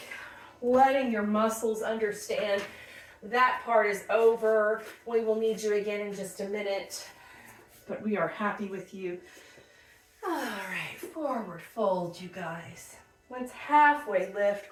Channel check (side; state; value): both; identical; correlation 1.00